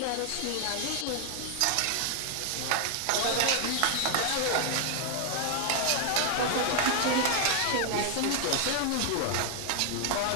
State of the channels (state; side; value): different; both; correlation 0.00